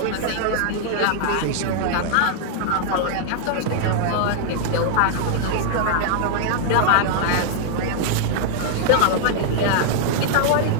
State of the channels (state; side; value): different; both; correlation -0.01